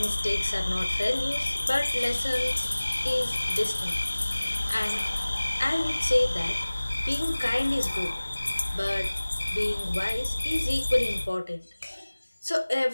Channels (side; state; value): both; inverted; correlation -1.00